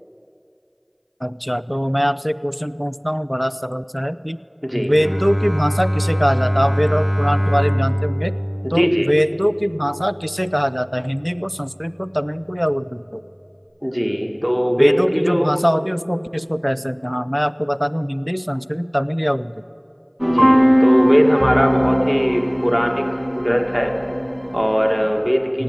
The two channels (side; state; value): both; identical; correlation 1.00